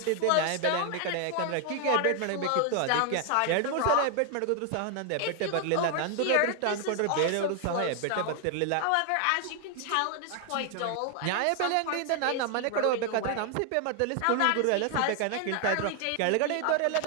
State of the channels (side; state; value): both; different; correlation 0.00